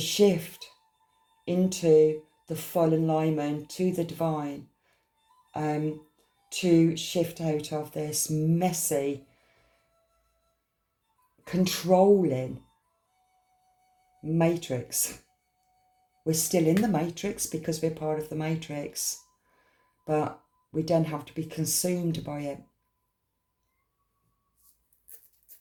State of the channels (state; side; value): identical; both; correlation 1.00